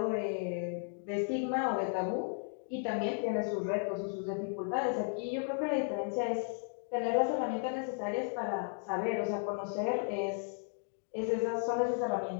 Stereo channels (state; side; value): silent; right; 55 dB below the other